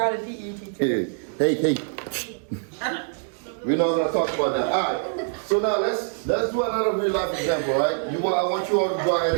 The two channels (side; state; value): left; silent; 62 dB below the other